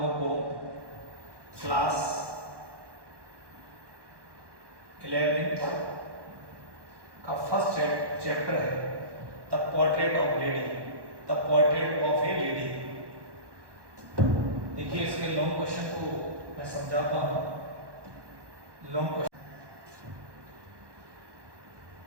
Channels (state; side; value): late; left; 1.1 ms